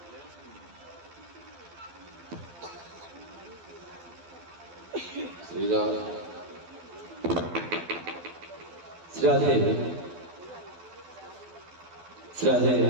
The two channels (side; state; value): left; late; 12 ms